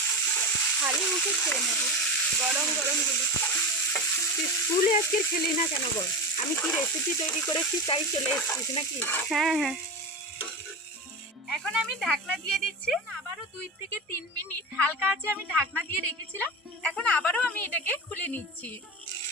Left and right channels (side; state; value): both; normal; correlation 0.24